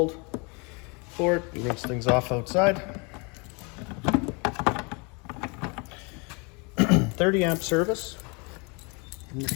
for it. You rinse things off outside. 30 amp service in the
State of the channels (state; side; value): quieter; right; 31.3 dB